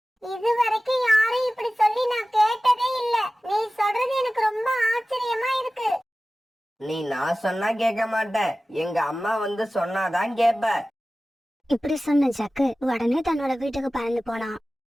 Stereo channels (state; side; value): normal; both; correlation 0.96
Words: இது வரைக்கும் யாரும் இப்படி சொல்லி நான் கேட்டதே இல்ல. நீ சொல்றது எனக்கு ரொம்ப ஆச்சரியமா இருக்கு. நான் சொன்னா கேட்க மாட்டேன், எங்க அம்மா வந்து சொன்னாதான் கேப்ப. இப்படி சொன்ன ஜக்கு உடனே தன்னோட வீட்டுக்கு பறந்து போனான்.